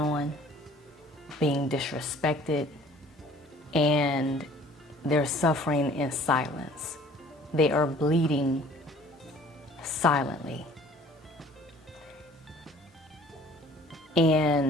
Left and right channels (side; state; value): both; normal; correlation 0.53